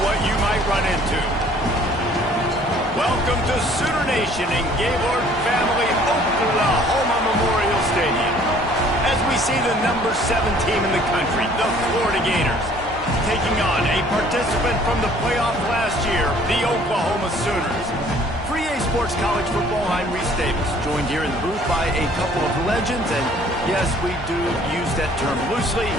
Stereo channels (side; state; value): both; normal; correlation 0.56